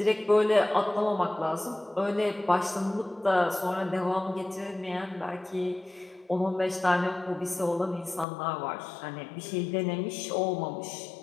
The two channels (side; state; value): right; drops out; at 8.2 s